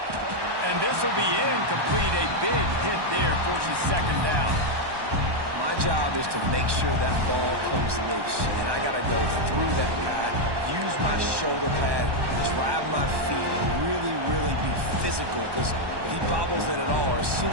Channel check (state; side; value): late; left; 1.2 ms